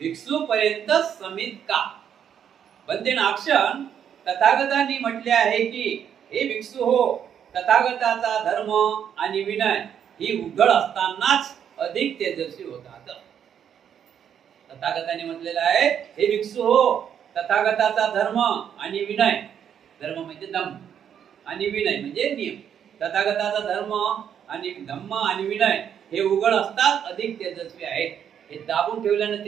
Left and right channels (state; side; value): quieter; left; 8.7 dB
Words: समित का? बनते नाक्षण, तथागतांनी म्हटले आहे की हे भिक्षू हो, तथागताचा धर्म आणि विनय ही उघड असतानाच अधिक तेजस्वी होतात. तथागतांनी म्हटलेलं आहे, हे भिक्षू हो, तथागताचा धर्म आणि विनय, धर्म म्हणजे दम आणि विनय म्हणजे नियम, तथागताचा धर्म आणि धम्म आणि विनय हे उघड असतात अधिक तेजस्वी आहेत. हे दाबून ठेवल्याने